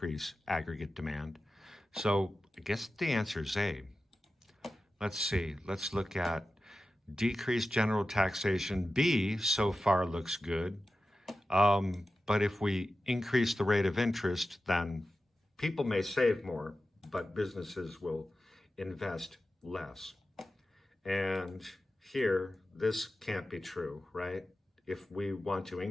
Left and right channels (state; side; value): normal; both; correlation 0.93